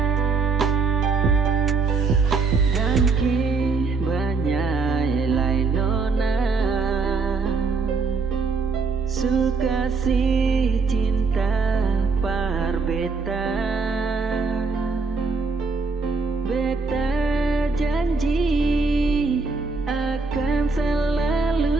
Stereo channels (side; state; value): left; quieter; 4.4 dB